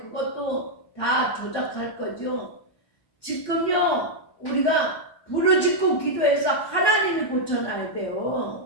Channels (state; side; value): late; right; 1.2 ms